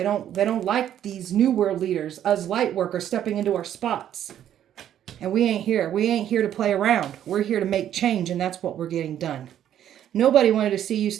don't like these new world leaders, us light workers, stepping into our spots. And we ain't here. We ain't here to play around. We're here to make change, and that's what we're getting done. Nobody wanted to see you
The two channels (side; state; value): left; quieter; 10.7 dB